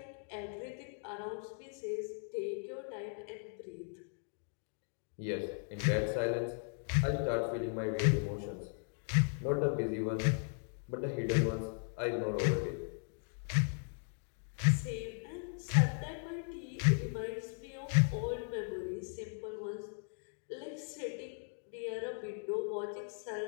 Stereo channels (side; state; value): right; silent; 53 dB below the other